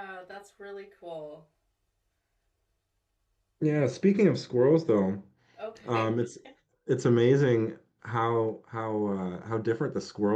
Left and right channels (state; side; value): identical; both; correlation 1.00